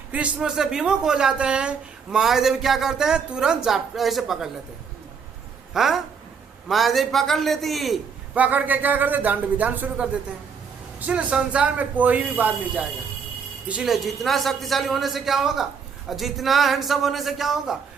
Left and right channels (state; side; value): quieter; left; 6.1 dB